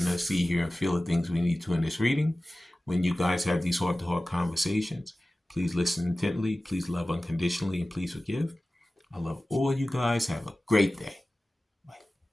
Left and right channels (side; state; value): both; normal; correlation 0.96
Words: us see, hear, and feel the things we need to in this reading. When you guys have these heart-to-heart conversations, please listen intently, please love unconditionally, and please forgive. I love all you guys. Have a great day.